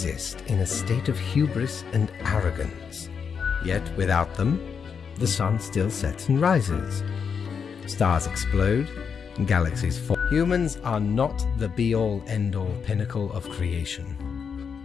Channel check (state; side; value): quieter; right; 6.5 dB